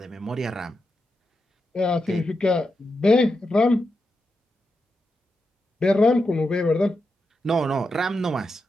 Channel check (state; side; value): normal; both; correlation 0.87